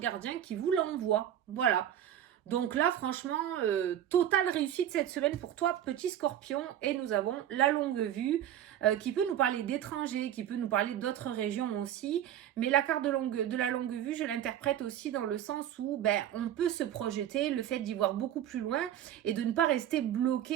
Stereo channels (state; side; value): quieter; left; 10.9 dB